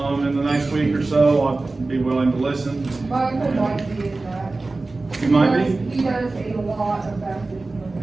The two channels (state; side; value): quieter; left; 3.4 dB